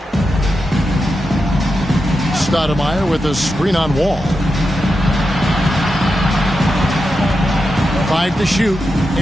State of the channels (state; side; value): normal; both; correlation 0.89